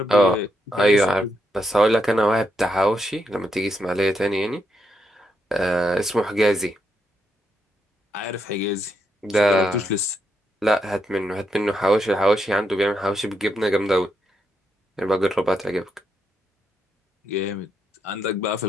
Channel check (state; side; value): normal; both; correlation 0.80